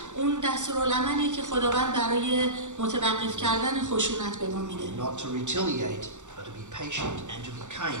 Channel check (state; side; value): late; left; 0.85 ms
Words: اون دستورالعملیه که خداوند برای متوقف کردن خشونت به ما میده. Not to retaliate, but to be patient and to be